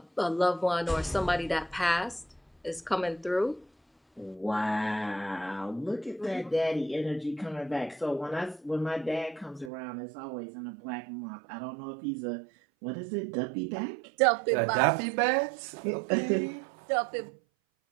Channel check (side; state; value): left; drops out; at 9.7 s